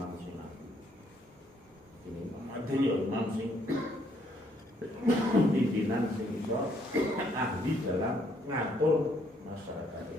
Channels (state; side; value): normal; both; correlation 0.69